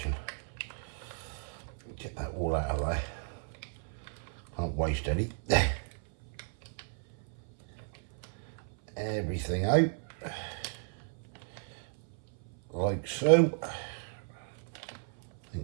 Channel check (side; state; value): left; silent; 55 dB below the other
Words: Get that all out of there. Can't waste any. Everything out like so. I